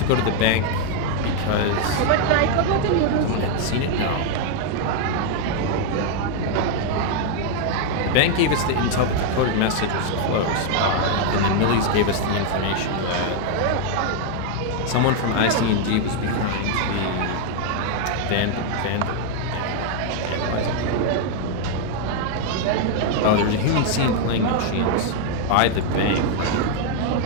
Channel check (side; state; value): both; different; correlation 0.00